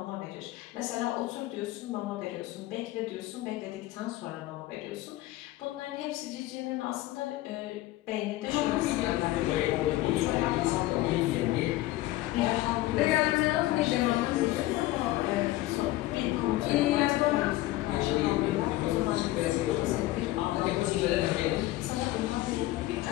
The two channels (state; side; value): quieter; right; 16.9 dB